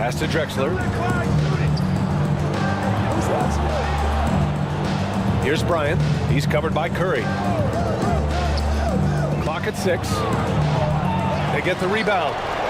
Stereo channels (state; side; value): identical; both; correlation 1.00